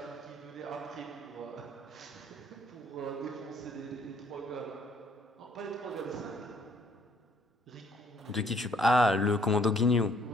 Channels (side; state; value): both; normal; correlation 0.63